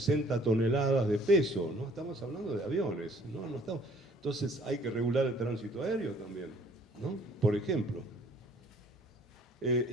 toneladas de peso, ¿no? Estamos hablando de aviones, ¿no? Entonces hay que regular el tránsito aéreo también, ¿no? Por ejemplo.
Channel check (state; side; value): normal; both; correlation 0.57